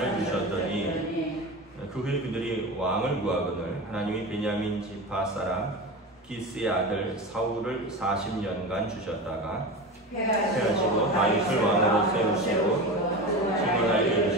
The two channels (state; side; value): normal; both; correlation 0.26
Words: 주셨더니 그 후에 그들이 왕을 구하거늘 하나님이 베냐민 지파 사람 기스의 아들 사울을 40년간 주셨다가 패하시고 다윗을 왕으로 세우시고 증언하여